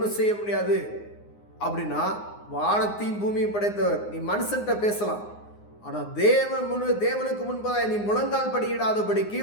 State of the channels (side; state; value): right; late; 9.7 ms